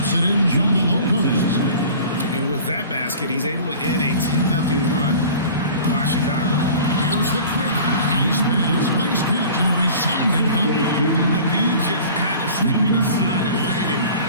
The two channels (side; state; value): both; inverted; correlation -0.42